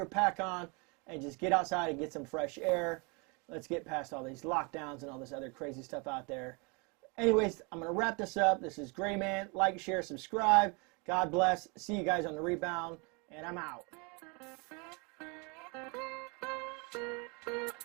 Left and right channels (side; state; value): left; quieter; 31.2 dB